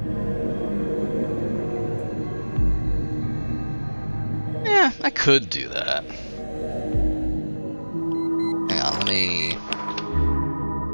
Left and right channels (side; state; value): both; inverted; correlation -1.00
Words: Yeah, I could do that. Hang on, let me